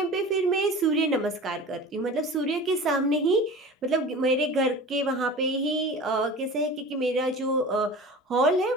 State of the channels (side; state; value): both; normal; correlation 0.37